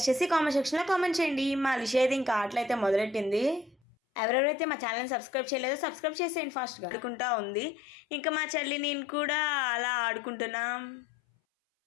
చేసి కామెంట్ సెక్షన్లో కామెంట్ చేయండి. మా లిష అయితే ఇంకా ఆటలైతే మొదలెట్టింది. ఎవరెవరైతే మా ఛానల్ని సబ్స్క్రైబ్ చేయలేదో సబ్స్క్రైబ్ చేసేయండి ఫాస్ట్గా. ఆడుకుంటా ఉంది. ఇంకా మా చెల్లి నేను కూడా అలా ఆడుకుంటున్నాం.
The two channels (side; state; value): right; drops out; at 3.8 s